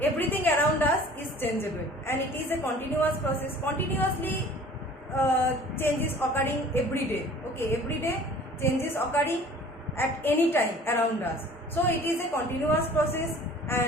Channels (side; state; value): both; normal; correlation 0.48